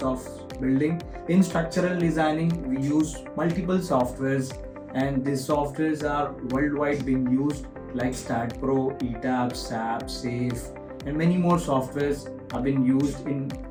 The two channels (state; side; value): identical; both; correlation 1.00